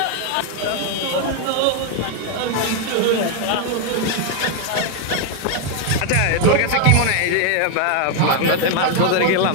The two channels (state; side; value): different; both; correlation 0.00